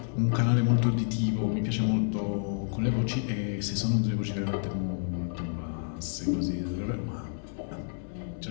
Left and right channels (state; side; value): silent; right; 58 dB below the other